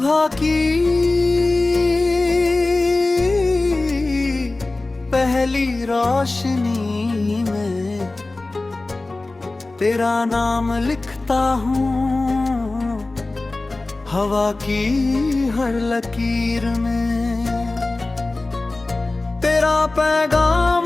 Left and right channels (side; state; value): right; quieter; 3.1 dB